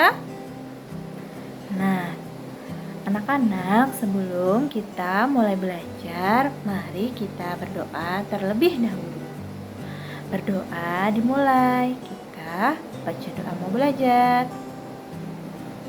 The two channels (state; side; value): identical; both; correlation 1.00